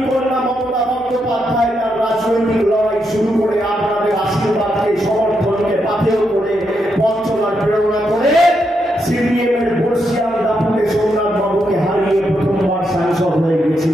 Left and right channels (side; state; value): both; normal; correlation 0.81